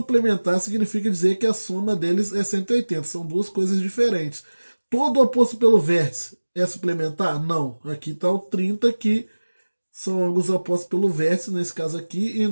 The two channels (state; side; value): inverted; both; correlation -1.00